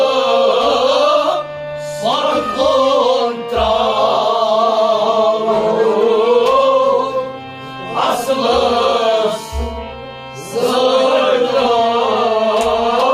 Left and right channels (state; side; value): identical; both; correlation 1.00